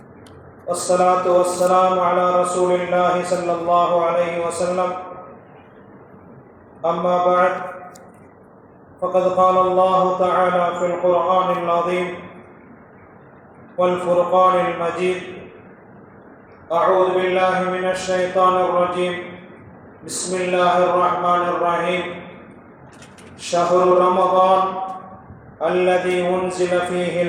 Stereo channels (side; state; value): both; identical; correlation 1.00